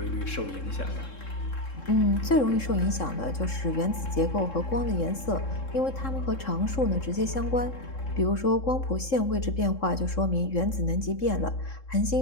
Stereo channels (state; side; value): late; right; 3.7 ms